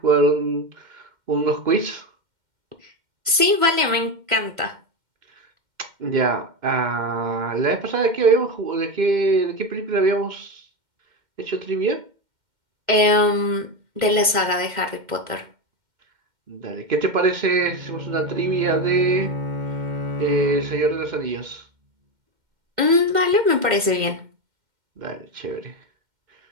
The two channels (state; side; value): late; left; 2.1 ms